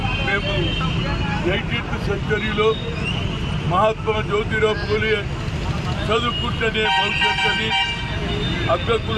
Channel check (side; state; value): both; identical; correlation 1.00